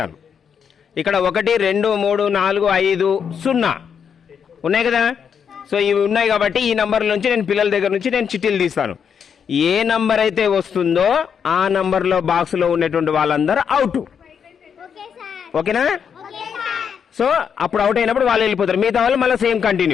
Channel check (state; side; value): quieter; right; 7.3 dB